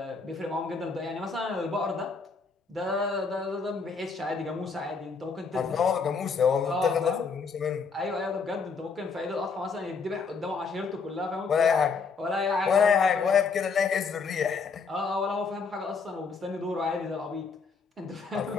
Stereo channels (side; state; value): right; quieter; 5.0 dB